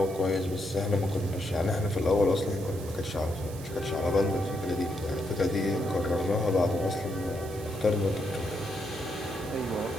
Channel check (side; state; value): right; noise; hiss, 17 dB below the sound